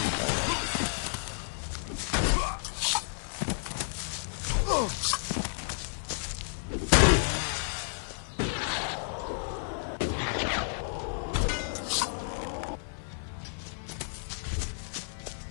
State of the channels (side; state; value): right; silent; 57 dB below the other